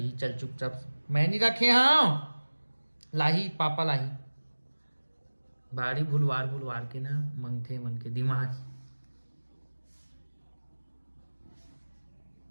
चल चुपचाप। मैं नहीं रखे हाँ लाही पापा लाही बाड़ी भुलवार के ना मंगथे मन के दिमाग।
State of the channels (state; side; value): inverted; both; correlation -1.00